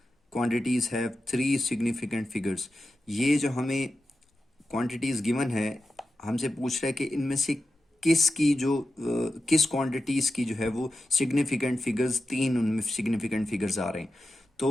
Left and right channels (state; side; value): normal; both; correlation 0.91